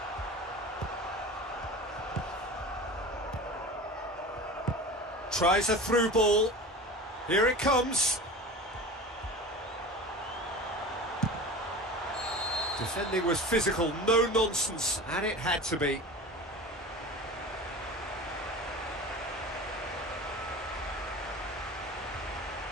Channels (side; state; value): both; normal; correlation 0.34